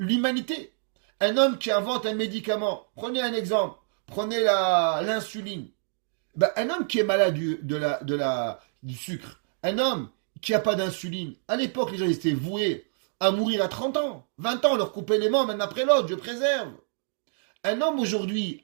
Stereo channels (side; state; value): left; silent; digital silence